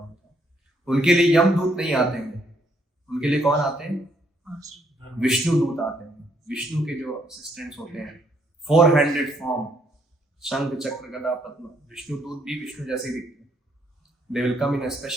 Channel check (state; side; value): normal; both; correlation 0.71